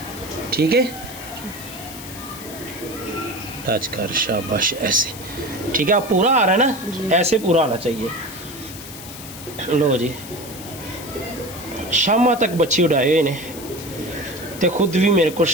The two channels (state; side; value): noise; left; hiss, 13 dB below the sound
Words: ठीक है। टच कर, शाबाश, ऐसे ठीक है। आप पूरा आ रहा है ना, ऐसे पूरा आना चाहिए। लो जी, शामा तक बच्चे उड़ाए ने, ते खुद भी मेरे को